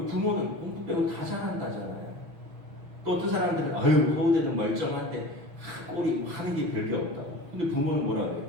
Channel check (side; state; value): left; late; 6.1 ms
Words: 공부 빼고 다 잘한다잖아요. 또 어떤 사람들은 서울대는 멀쩡한데 꼴이 하는 게 별게 없다고. 근데 부모는 뭐라고 해요?